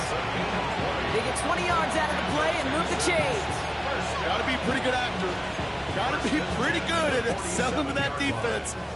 They get 20 yards out of the play and move the chains. Got to be a pretty good actor. Got to be pretty good at selling to that defense.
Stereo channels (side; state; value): both; identical; correlation 1.00